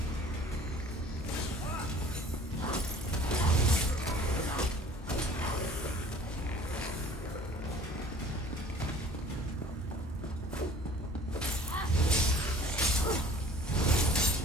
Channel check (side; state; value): both; normal; correlation 0.48